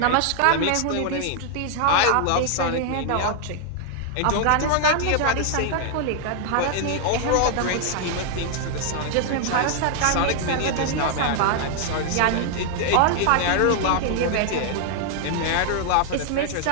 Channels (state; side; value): different; both; correlation 0.00